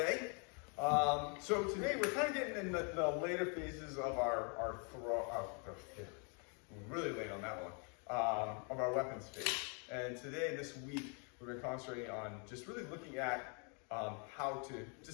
So today we're kind of getting in the later phases of our throw. Really late on that one. Of our weapons phase. And today, this week, we've been concentrating on just really looking at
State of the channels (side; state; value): right; quieter; 37.3 dB